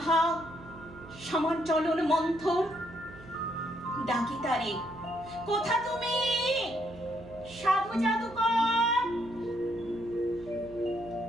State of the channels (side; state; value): right; noise; hum, 18 dB below the sound